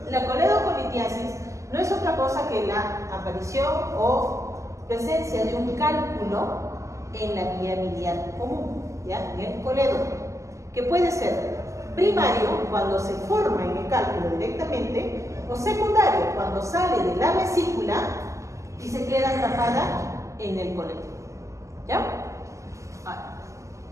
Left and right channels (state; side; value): late; left; 0.15 ms